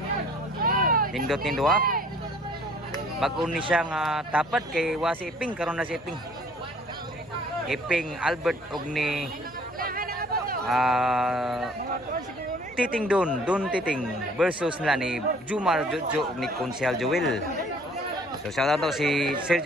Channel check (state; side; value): normal; both; correlation 0.55